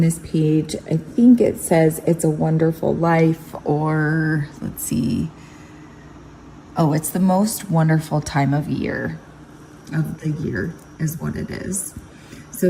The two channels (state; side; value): identical; both; correlation 1.00